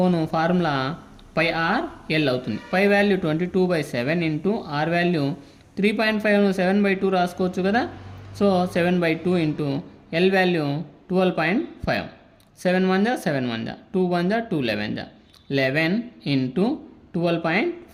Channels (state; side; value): identical; both; correlation 1.00